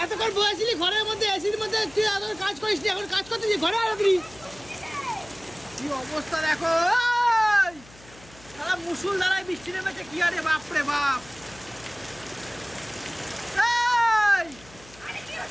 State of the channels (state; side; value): noise; left; hum, 23 dB below the sound